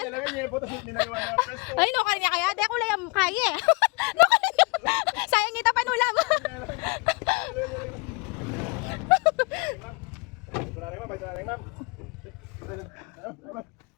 Ay, no, kanya kaya. Di ako layang kaya eh. No, kanya. Sayang nita panulam.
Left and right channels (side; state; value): right; quieter; 29.3 dB